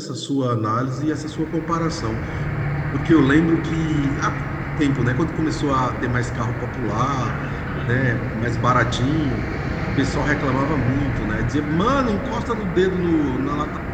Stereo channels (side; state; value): both; identical; correlation 1.00